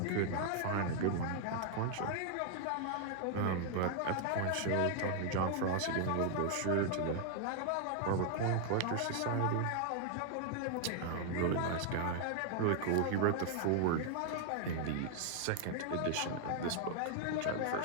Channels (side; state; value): both; different; correlation 0.00